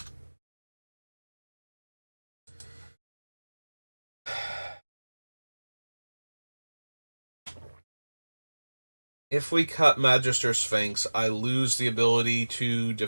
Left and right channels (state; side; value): inverted; both; correlation -1.00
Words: If we cut Magister Sphinx, I lose the ability to